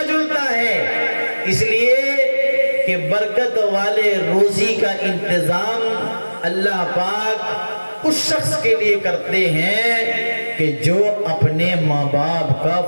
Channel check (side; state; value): both; inverted; correlation -1.00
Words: جلتا ہے۔ اس لیے کہ برکت والے روزی کا انتظام اللہ پاک اس شخص کے لیے کرتے ہیں کہ جو اپنے ماں باپ کا